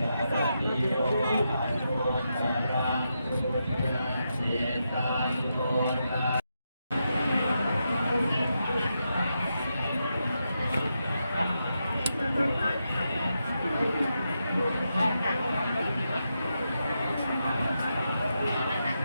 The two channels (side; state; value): both; inverted; correlation -0.85